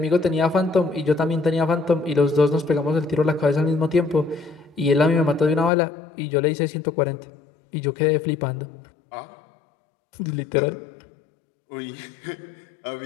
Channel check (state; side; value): drops out; right; at 5.7 s